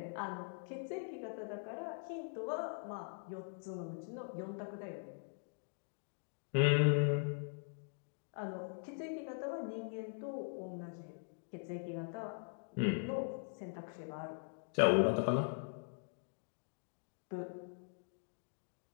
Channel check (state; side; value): silent; right; digital silence